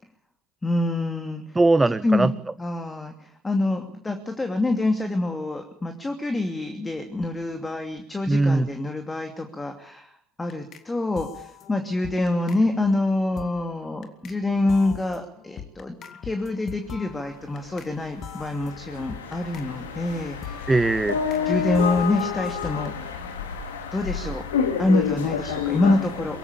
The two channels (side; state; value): both; normal; correlation 0.77